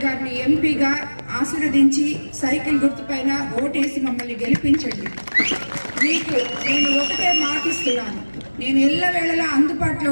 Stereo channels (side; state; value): both; inverted; correlation -1.00